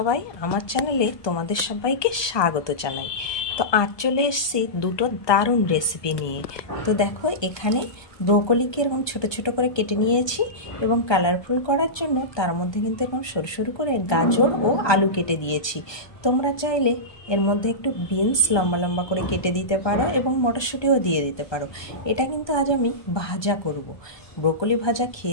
আমার চ্যানেলে তোমাদের সবাইকে স্বাগত জানাই। তো আজ চলে এসেছি দুটো দারুণ রেসিপি নিয়ে। তো দেখো এখানে ব্রোকলিকে এরকম ছোট ছোট করে কেটে নিয়েছি এবং কালারফুল করার জন্য তার মধ্যে কিন্তু এরকম সরু সরু করে গাজর ও আলু কেটে দিয়েছি। তোমরা চাইলে এর মধ্যে একটু বিনস লম্বা লম্বা করে কেটে দিতে পারো এবং মটরশুঁটিও দিয়ে দিতে পারো। এটা কিন্তু আজ আমি ভাজা করব। ব্রোকলি ভাজা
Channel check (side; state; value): right; late; 1.2 ms